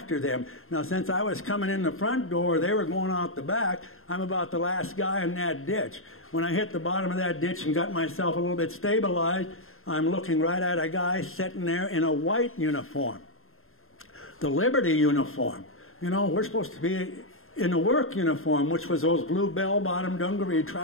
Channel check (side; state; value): right; late; 0.61 ms